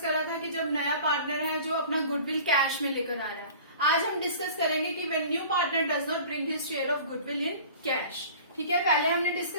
करा था कि जब नया पार्टनर है जो अपना गुडविल कैश में लेकर आ रहा है। आज हम डिस्कस करेंगे कि when new partner does not bring his share of goodwill in cash. ठीक है, पहले हमने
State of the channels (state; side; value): inverted; both; correlation -0.43